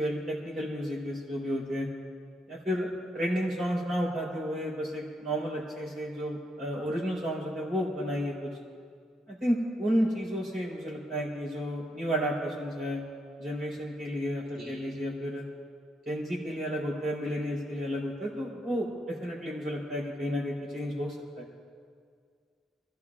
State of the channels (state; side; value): normal; both; correlation 0.79